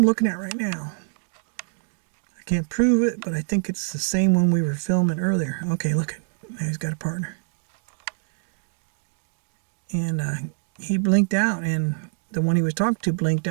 looking at right now. I can't prove it, but I think it's the same one we were filming earlier. Okay, look at. Now he's got a partner. And he blinked out, and the one he was talking to blinked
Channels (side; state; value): left; silent; digital silence